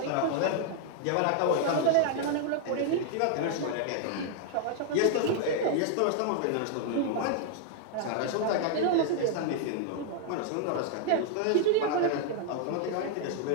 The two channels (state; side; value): different; both; correlation 0.00